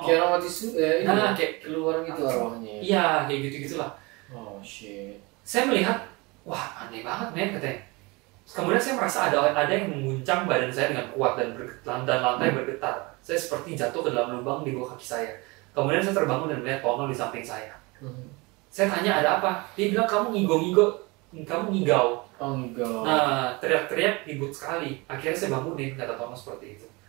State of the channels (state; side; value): quieter; left; 25.6 dB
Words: Kayak orang mati kayak keluar gitu arwahnya. Iya, kayak gitu-gitulah. Oh shit. Saya melihat, wah aneh banget men katanya. Kemudian saya merasa ada yang menguncang badan saya dengan kuat dan lantai bergetar. Saya seperti jatuh ke dalam lubang di bawah kaki saya. Kemudian saya terbangun dan melihat Tono di samping saya. Saya tanya ada apa? Dia bilang kamu ngigau. Oh ngigau. Nah teriak-teriak ribut sekali. Akhirnya saya bangunin, kata Tono seperti itu.